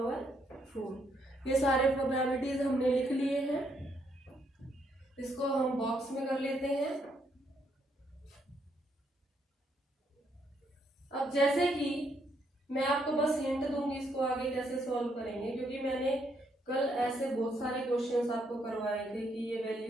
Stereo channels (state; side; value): normal; both; correlation 0.74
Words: 4। ये सारे probabilities हमने लिख लिए हैं। इसको हम बॉक्स में कर लेते हैं। अब जैसे कि मैं आपको बस हिंट दूंगी इसको आगे कैसे सॉल्व करेंगे, क्योंकि मैंने कल ऐसे बहुत सारे क्वेश्चंस आपको करवाए थे कि ये